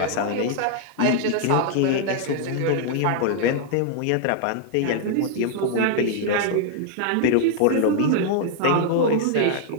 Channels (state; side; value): different; both; correlation -0.01